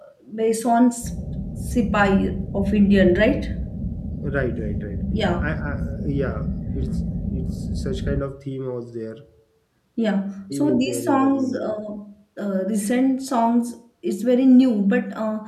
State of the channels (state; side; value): identical; both; correlation 1.00